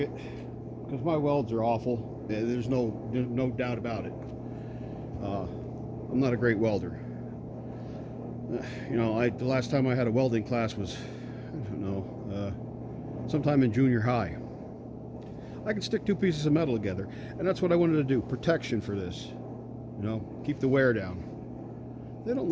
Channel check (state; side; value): identical; both; correlation 1.00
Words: Because my welds are awful. There's no doubt about it. I'm not a great welder. You know, the last time I had a welding class was, I don't know, sometime in junior high. I can stick two pieces of metal together, and that's what I wanted to do. Protection for this, you know, keep the wear down. They don't